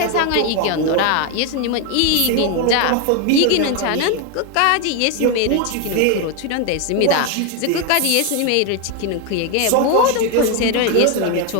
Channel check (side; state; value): both; different; correlation 0.01